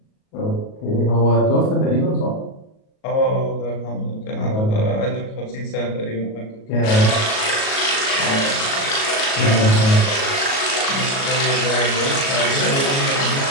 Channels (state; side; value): late; right; 37 ms